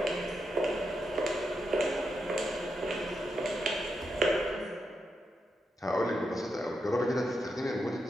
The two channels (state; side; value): normal; both; correlation 0.85